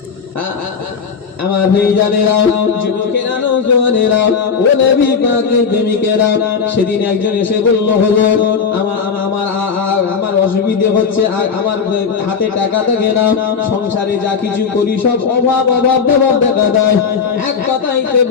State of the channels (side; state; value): right; quieter; 6.0 dB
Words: আমার ভাইজানেরা, যুবকেরা, নওজওয়ানেরা, ও নবী পাকের প্রেমিকেরা, সেদিন একজন এসে বলল, হুজুর আমার অসুবিধা হচ্ছে, আমার হাতে টাকা থাকে না, সংসারে যা কিছু করি সব অভাব দেখা দেয়। এক কথাইতে